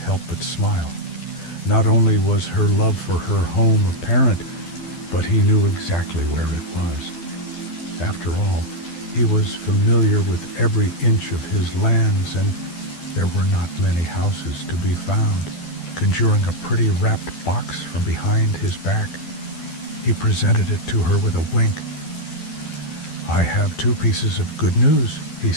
but smile. Not only was her love for her home apparent, but he knew exactly where it was. After all, he was familiar with every inch of his lands, and there were not many houses to be found. Conjuring a pretty wrapped box from behind his back, he presented it to her with a wink. "I have 2 pieces of good news," he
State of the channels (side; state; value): right; late; 12 ms